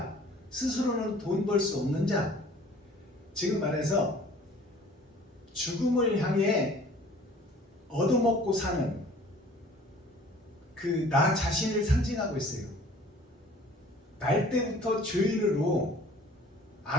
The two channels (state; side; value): normal; both; correlation 0.51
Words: 스스로는 돈 벌 수 없는 자, 지금 말해서 죽음을 향해 얻어먹고 사는 그 나 자신을 상징하고 있어요. 날 때부터 죄인으로